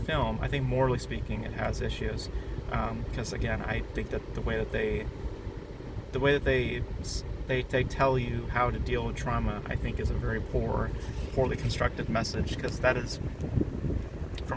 I think morally speaking, it has issues. Because again, I think that the way that they tell you how to deal with trauma, I think is a very poorly constructed message. Because that is,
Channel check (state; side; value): identical; both; correlation 1.00